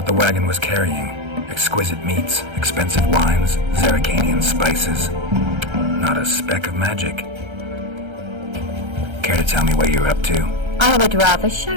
the wagon was carrying. Exquisite meats, expensive wines, Zerricanian spices. Not a speck of magic. Care to tell me what you're up to? I would rather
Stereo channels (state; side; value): late; left; 1.3 ms